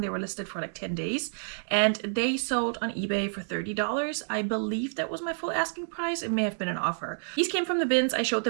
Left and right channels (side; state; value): left; silent; 59 dB below the other